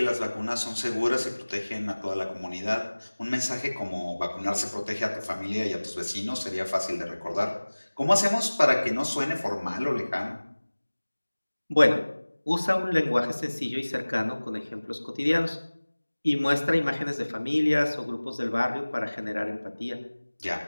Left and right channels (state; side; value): inverted; both; correlation -1.00